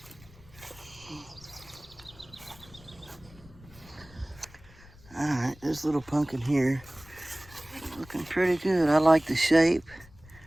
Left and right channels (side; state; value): left; noise; rumble, 22 dB below the sound